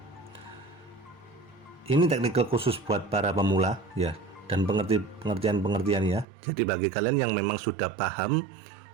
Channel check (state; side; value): drops out; left; at 6.2 s